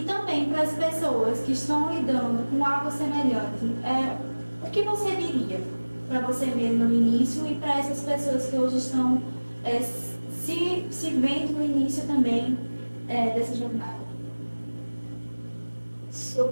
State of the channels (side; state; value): both; inverted; correlation -1.00